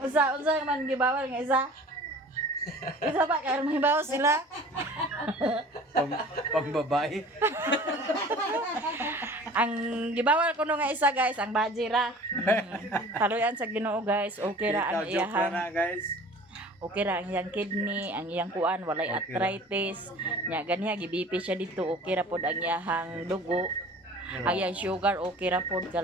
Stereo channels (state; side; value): normal; both; correlation 0.44